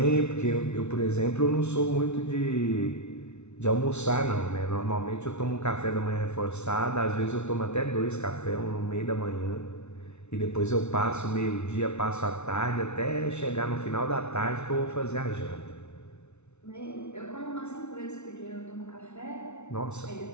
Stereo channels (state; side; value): late; right; 0.81 ms